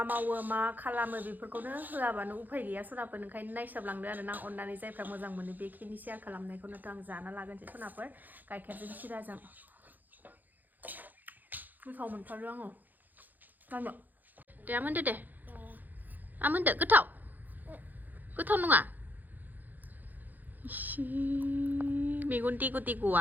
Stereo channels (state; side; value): late; left; 0.085 ms